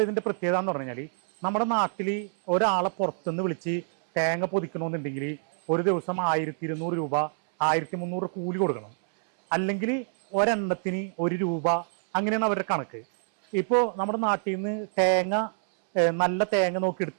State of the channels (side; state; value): left; silent; 60 dB below the other